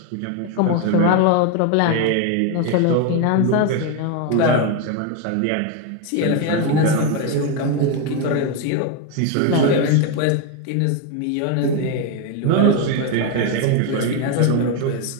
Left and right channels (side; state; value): both; different; correlation 0.02